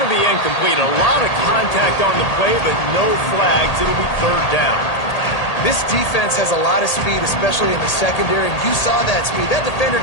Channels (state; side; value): late; right; 1.8 ms